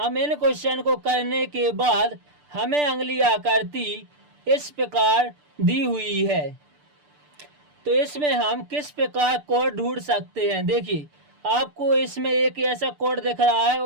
इन क्वेश्चन को करने के बाद हमें अंगुली आकृति इस प्रकार दी हुई है, तो इसमें हम किस प्रकार कोड ढूंढ सकते हैं। देखिए आपको इसमें एक ऐसा कोड दिख रहा है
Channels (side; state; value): left; late; 6.8 ms